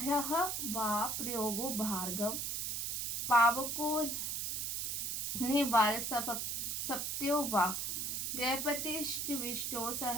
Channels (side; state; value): right; noise; hiss, 1 dB below the sound